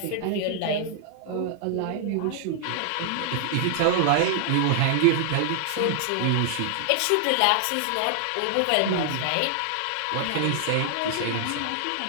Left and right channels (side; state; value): both; different; correlation 0.00